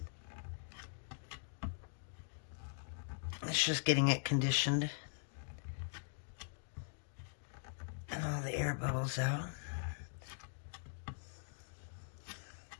It's just getting it conditioned. And all the air bubbles out.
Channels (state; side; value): silent; right; digital silence